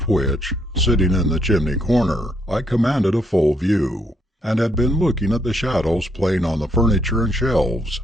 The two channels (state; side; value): normal; both; correlation 0.73